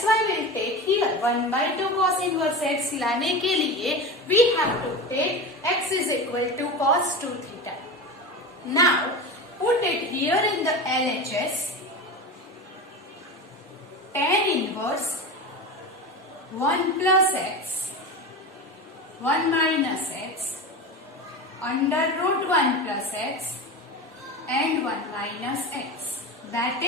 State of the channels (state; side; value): normal; both; correlation 0.26